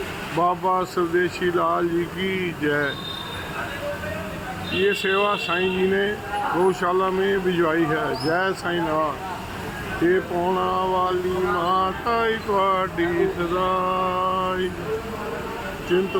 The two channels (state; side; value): identical; both; correlation 1.00